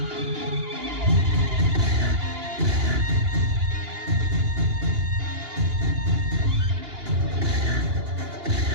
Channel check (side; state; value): left; late; 2.8 ms